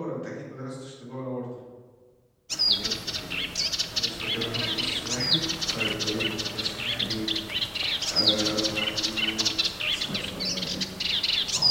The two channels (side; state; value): both; identical; correlation 1.00